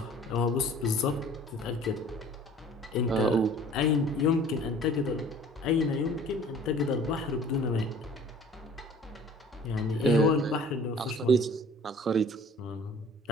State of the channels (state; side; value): normal; both; correlation 0.49